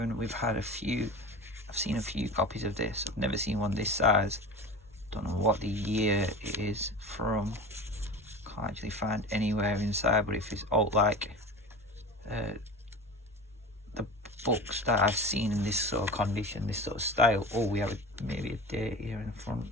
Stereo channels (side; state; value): both; normal; correlation 0.33